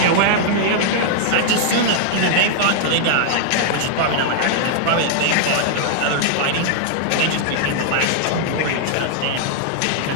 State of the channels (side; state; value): both; different; correlation -0.01